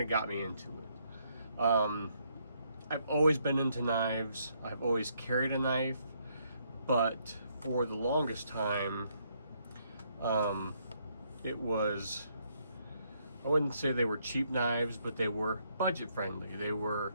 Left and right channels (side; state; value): both; inverted; correlation -0.72